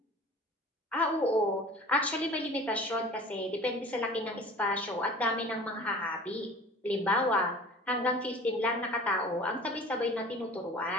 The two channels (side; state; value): both; normal; correlation 0.43